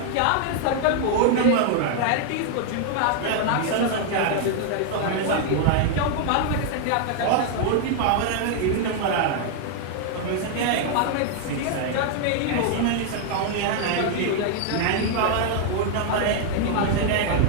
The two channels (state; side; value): different; both; correlation 0.00